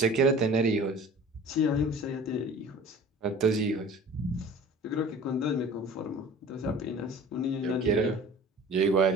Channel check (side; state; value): both; normal; correlation 0.43